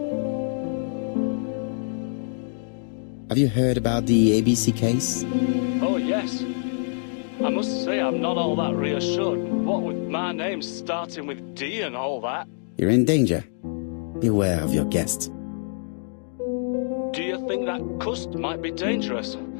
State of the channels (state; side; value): silent; right; digital silence